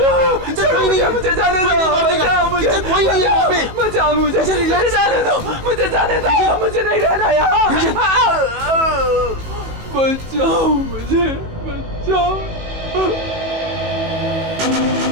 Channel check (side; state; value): left; late; 18 ms